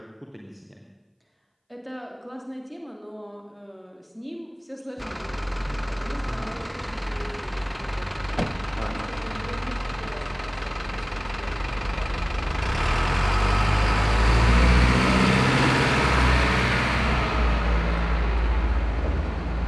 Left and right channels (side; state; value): both; identical; correlation 1.00